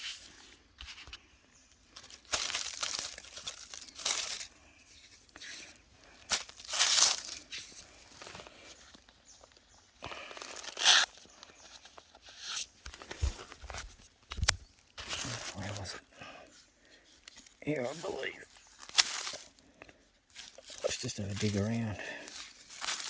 Where was it? Here, I believe. Let's just have a dig around.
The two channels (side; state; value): both; identical; correlation 1.00